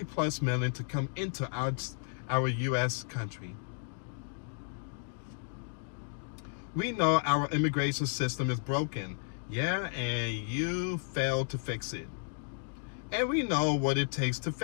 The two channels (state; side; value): silent; right; digital silence